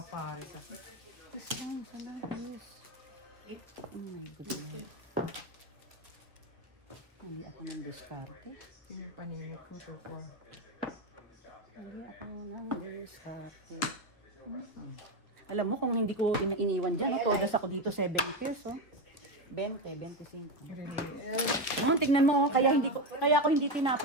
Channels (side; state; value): both; normal; correlation 0.14